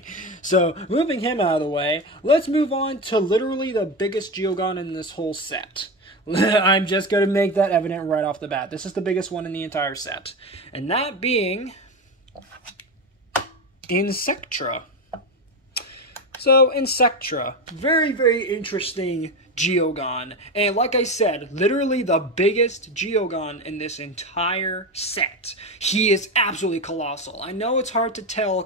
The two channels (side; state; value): both; normal; correlation 0.19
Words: So, moving him out of the way, let's move on to literally the biggest Geogan in this whole set. I'm just going to make that evident right off the bat. This is the biggest one in the entire set. And that being Insectra. So, Insectra, very, very interesting Geogan. And like I said, literally the biggest Geogan in this entire set. He is absolutely colossal. I know it's hard to tell